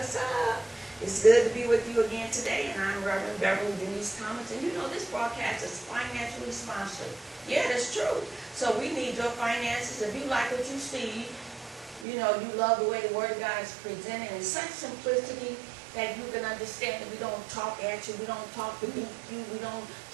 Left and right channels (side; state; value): left; drops out; at 12.1 s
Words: up? It's good to be with you again today, and I'm Reverend Beverly Denise Thomas, and you know this broadcast is financially sponsored. Yeah, that's true. So we need your finances. If you like what you see, you know, you love the way the Word of God is presented in such simplicity that you can understand that we don't talk at you, we don't talk beneath you, we don't